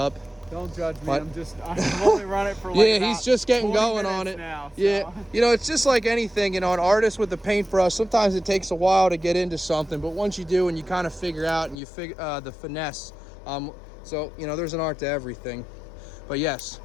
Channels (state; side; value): drops out; right; at 11.8 s